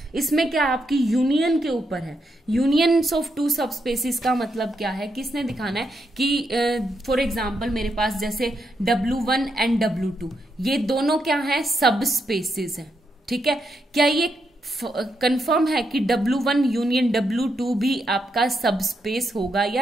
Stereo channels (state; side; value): normal; both; correlation 0.81